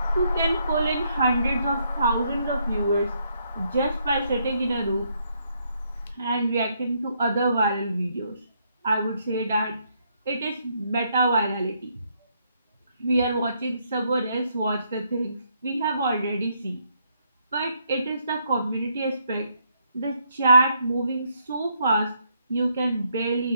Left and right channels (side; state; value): both; inverted; correlation -0.74